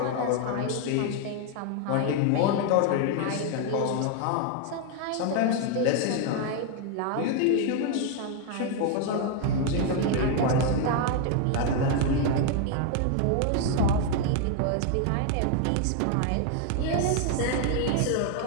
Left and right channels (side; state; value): both; different; correlation 0.01